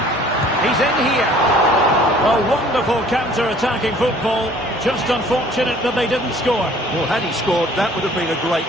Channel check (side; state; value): both; normal; correlation 0.54